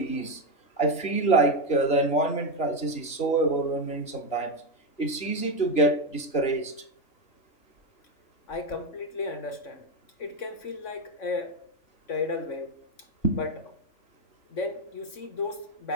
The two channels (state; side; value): late; right; 2.9 ms